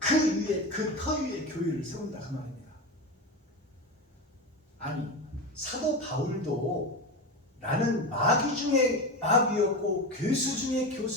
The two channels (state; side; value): normal; both; correlation 0.21